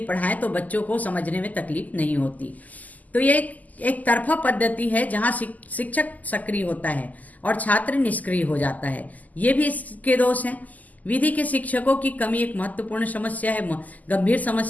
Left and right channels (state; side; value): late; right; 0.079 ms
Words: पढ़ाएं तो बच्चों को समझने में तकलीफ नहीं होती। तो ये एक तरफा पद्धति है जहां शिक्षक सक्रिय होता है और छात्र निष्क्रिय हो जाता है। ये भी इसके दोष हैं। विधि के शिक्षकों की कमी एक महत्वपूर्ण समस्या है, गंभीर